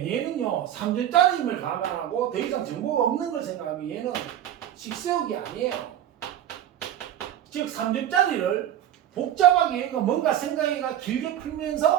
얘는요 3점짜리임을 감안하고 더 이상 정보가 없는 걸 생각하면 얘는 식세우기 아니에요. 즉 3점짜리를 복잡하게 얘가 뭔가 생각해가 길게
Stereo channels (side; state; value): left; quieter; 11.4 dB